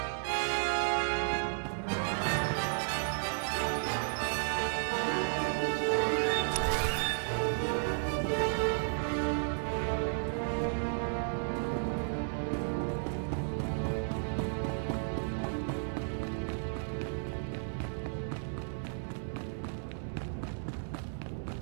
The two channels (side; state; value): left; silent; 55 dB below the other